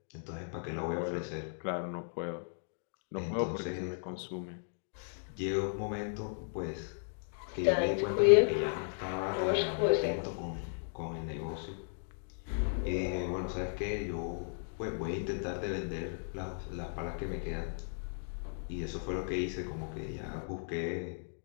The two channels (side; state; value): right; silent; digital silence